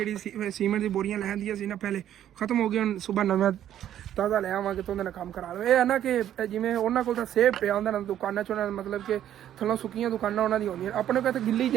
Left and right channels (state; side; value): quieter; left; 11.1 dB